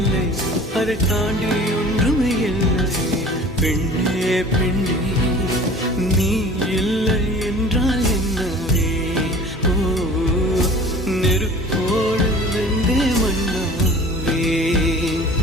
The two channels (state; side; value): normal; both; correlation 0.44